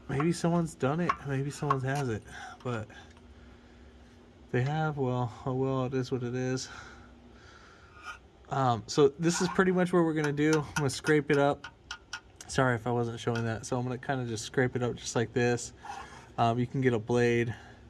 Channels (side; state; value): both; identical; correlation 1.00